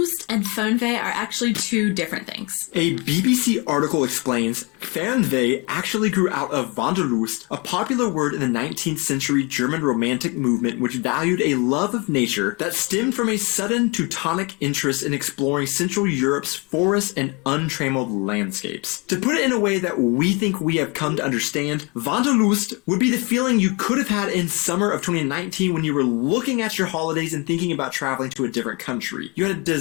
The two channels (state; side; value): quieter; right; 28.3 dB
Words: and Fernweh are actually two different things. A BBC article explains Fernweh actually grew out of Wanderlust, a popular word in the 19th century German Romantic movement which valued a love of nature that stemmed from a sudden Teutonic interest in exploring Central Europe's forests and untrammeled landscapes. To put it in a way that we think we have come to understand, Wanderlust would be the feeling you could have had in summer of 2019 when you were looking at your holidays and thinking about traveling to a different country. You had a